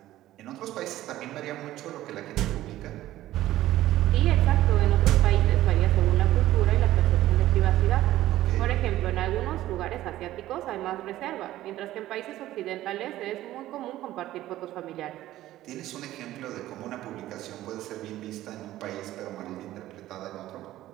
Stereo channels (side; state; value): left; quieter; 14.7 dB